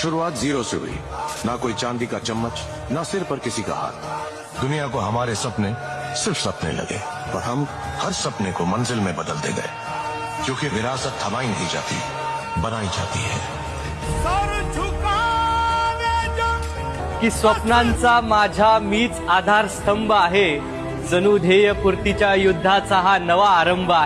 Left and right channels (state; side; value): identical; both; correlation 1.00